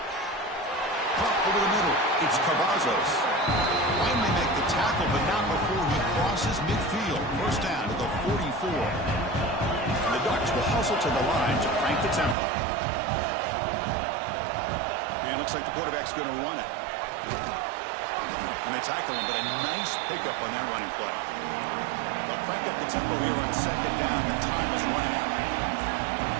Pop over the middle. It's Cavazos. Finally make the tackle, but not before he crosses midfield. First down to the 44. And the Ducks will hustle to the line to crank the tempo. And it looks like the quarterback's going to run it. And they tackle him, but a nice pickup on that running play. They'll crank up the tempo here on second down. The time is running out.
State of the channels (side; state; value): left; drops out; at 12.4 s